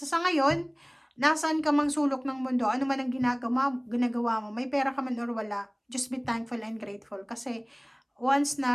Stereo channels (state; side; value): identical; both; correlation 1.00